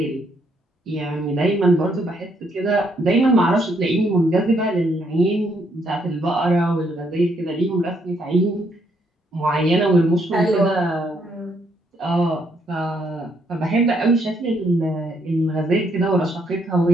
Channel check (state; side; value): normal; both; correlation 0.73